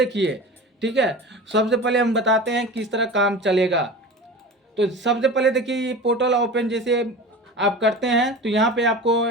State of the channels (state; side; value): normal; both; correlation 0.34